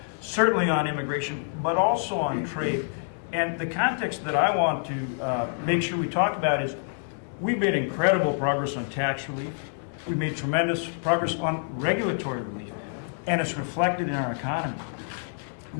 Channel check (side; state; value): right; silent; digital silence